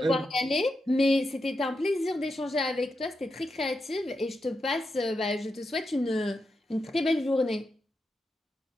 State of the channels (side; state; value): both; normal; correlation 0.87